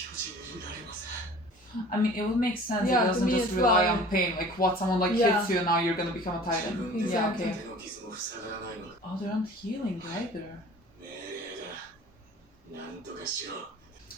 人 I mean, it would make sense. Yeah, It to doesn't me just as rely well. on pain. Like, what someone like Yeah. hits you and now you're gonna become a 自 titan. 分で Yeah, okay. 手の傷も塞がらないのだ。 Oh, they're not healing either. 命令だ。なんとかしろ。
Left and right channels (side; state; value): both; normal; correlation 0.45